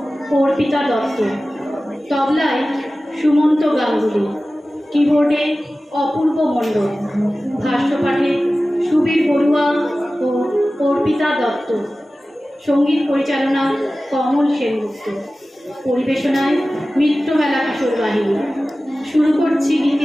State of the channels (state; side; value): normal; both; correlation 0.96